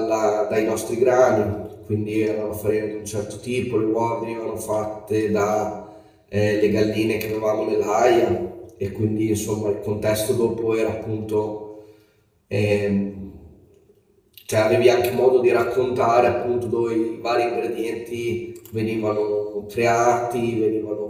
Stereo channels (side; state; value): both; identical; correlation 1.00